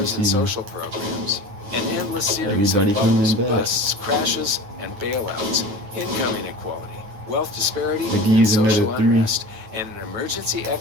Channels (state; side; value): late; left; 9.3 ms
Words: season. social programs, an endless series Everybody of bubbles, coming back. busts, crashes, and bailouts, income inequality, wealth disparity, They can and use social another 3. unrest, and an emergency